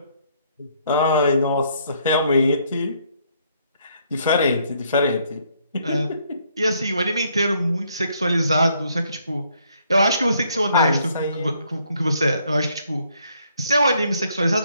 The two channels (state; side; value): inverted; both; correlation -0.69